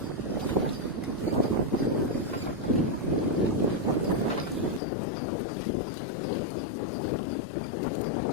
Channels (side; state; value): right; drops out; at 4.8 s